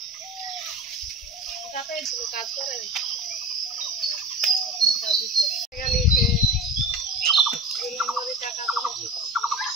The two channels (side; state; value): both; normal; correlation 0.31